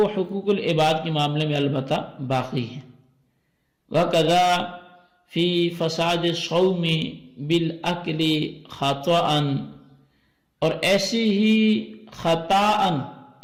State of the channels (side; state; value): both; identical; correlation 1.00